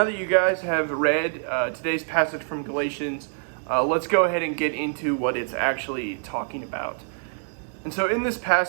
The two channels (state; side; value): silent; left; 62 dB below the other